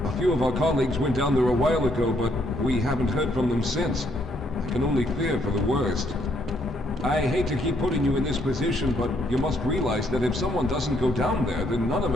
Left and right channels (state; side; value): normal; both; correlation 0.71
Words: A few of our colleagues went down there a while ago, but we haven't heard from them since. I can only fear for the worst. I hate to keep putting you in this position, but you must realize that if someone doesn't go down there, then none of